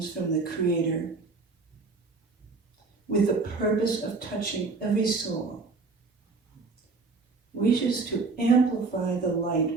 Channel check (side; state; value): left; quieter; 4.1 dB